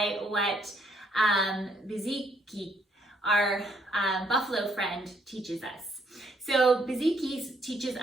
what Bizhiki, our buffalo friend, teaches us. So Bizhiki teaches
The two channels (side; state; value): both; normal; correlation 0.70